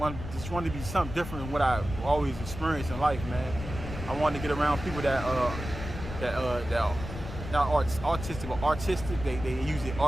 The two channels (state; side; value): noise; left; rumble, 9 dB below the sound